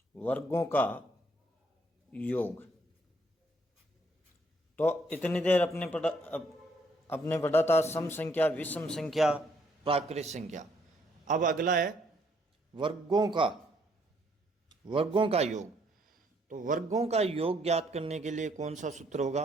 वर्गों का योग। तो इतनी देर अपने पढ़ा था सम संख्या, विषम संख्या, प्राकृत संख्या। अब अगला है वर्गों का योग। तो वर्गों का योग ज्ञात करने के लिए कौन सा सूत्र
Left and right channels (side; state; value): both; normal; correlation 0.68